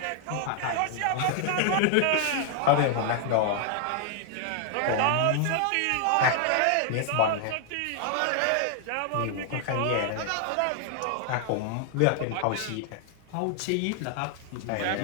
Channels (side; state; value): both; different; correlation 0.00